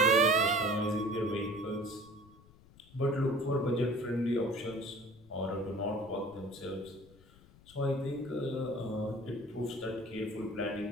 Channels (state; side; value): noise; left; rumble, 25 dB below the sound